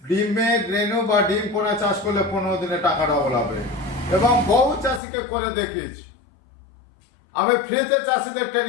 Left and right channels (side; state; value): right; drops out; at 5.0 s